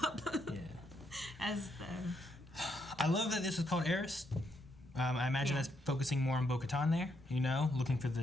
up. yeah, As the. I love that this is called Heiress. I imagine that's focusing more on Bo-Katan there, you know, looking for the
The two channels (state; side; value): normal; both; correlation 0.77